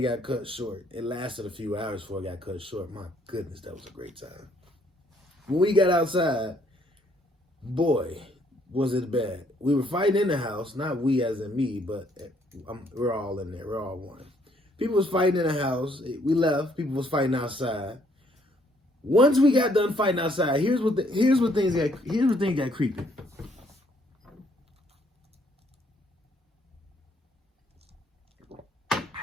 got cut short. It lasted a few hours before it got cut short. My goodness, that was a great time. When we got outside, boy, was it bad. We were fighting in the house, not we as in me, but we're all in there. We're all one. People was fighting in the house. We left. People was fighting outside. Once we got done fighting outside, here's what things got creepy.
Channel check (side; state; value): both; normal; correlation 0.67